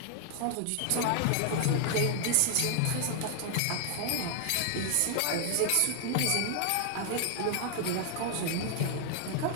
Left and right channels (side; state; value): both; different; correlation 0.00